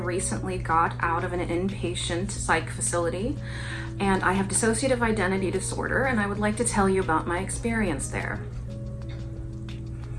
got out of an inpatient psych facility, and I have dissociative identity disorder, and I would like to tell you about my experience there.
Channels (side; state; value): both; identical; correlation 1.00